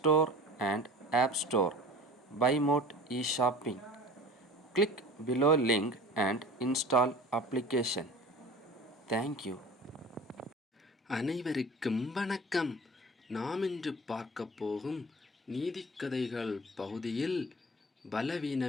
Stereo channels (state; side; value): normal; both; correlation 0.40